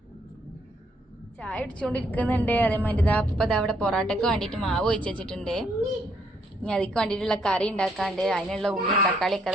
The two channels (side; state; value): both; normal; correlation 0.70